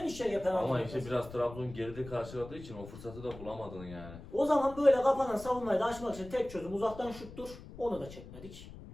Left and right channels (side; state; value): left; noise; rumble, 15 dB below the sound